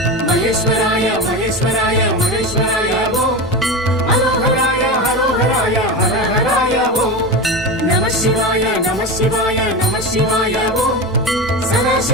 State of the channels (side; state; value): both; normal; correlation 0.22